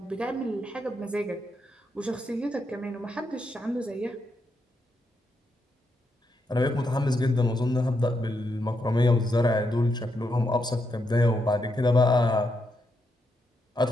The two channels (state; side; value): normal; both; correlation 0.81